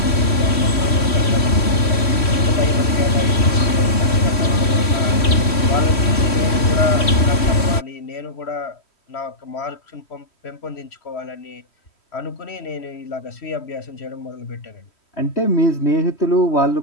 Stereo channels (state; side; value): late; right; 3.1 ms